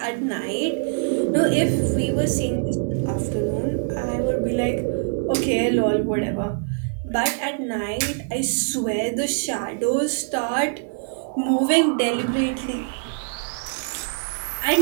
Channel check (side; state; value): left; silent; 57 dB below the other